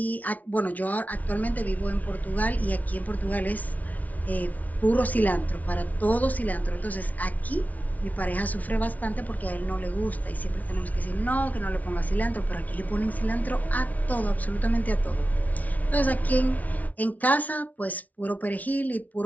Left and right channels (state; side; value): late; right; 0.073 ms